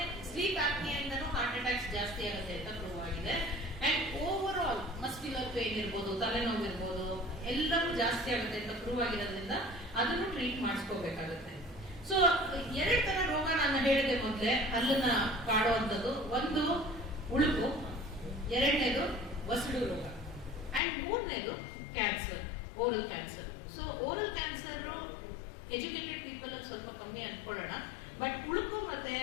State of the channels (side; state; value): right; drops out; at 20.8 s